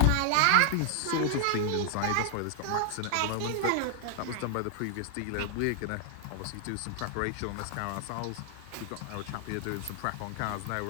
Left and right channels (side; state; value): both; different; correlation 0.00